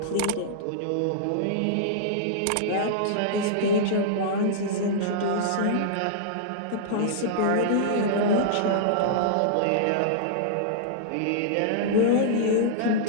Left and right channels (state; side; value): different; both; correlation -0.02